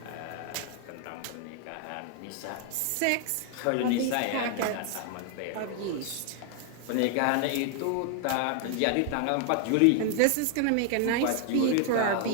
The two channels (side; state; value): both; different; correlation 0.00